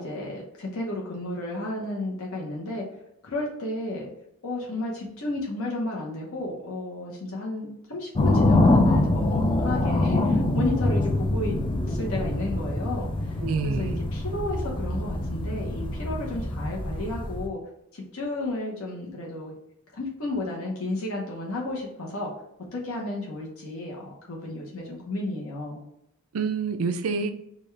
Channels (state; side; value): normal; both; correlation 0.68